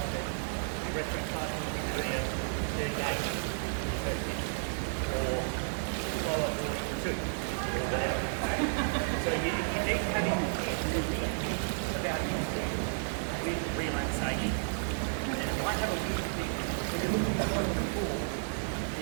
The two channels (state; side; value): silent; left; digital silence